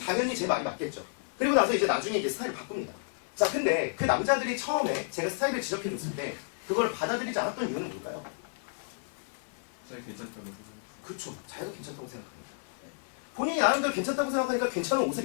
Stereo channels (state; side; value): silent; right; digital silence